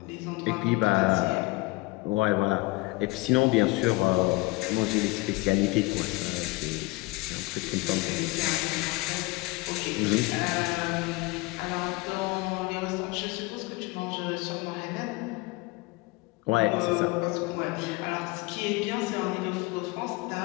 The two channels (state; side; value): quieter; right; 23.2 dB